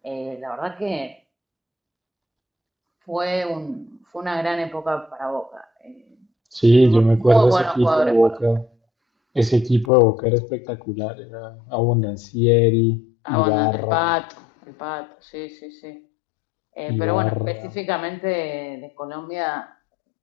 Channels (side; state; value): right; drops out; at 9.9 s